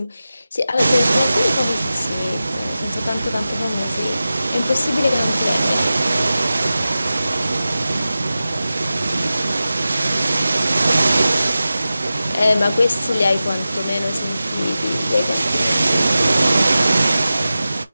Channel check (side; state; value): both; inverted; correlation -0.94